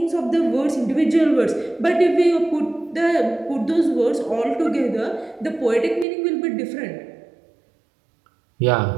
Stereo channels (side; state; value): left; drops out; at 6.1 s